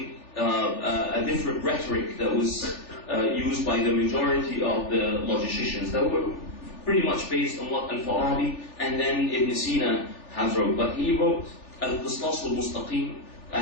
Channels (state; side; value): late; right; 3.4 ms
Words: a different rhetoric that was used by the majority of the logicians that were pretty much based on what Al-Farabi and then Ibn Sina has wrote. But he wrote Al-Qistas al-Mustaqim,